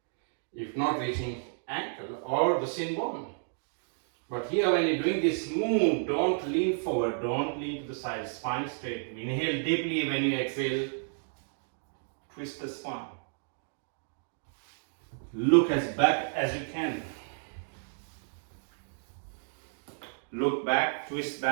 if not reaching ankle or the shin bone. But here when you're doing this move, don't lean forward, don't lean to the side, spine straight. Inhale deeply. When you exhale, twist the spine. Look as back as you can. Look back, twist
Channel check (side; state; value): left; silent; digital silence